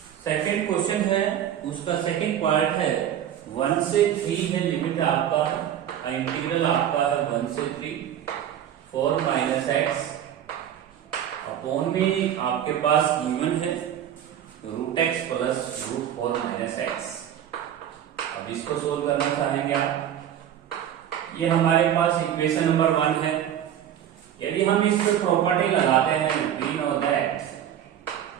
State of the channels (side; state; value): left; quieter; 10.3 dB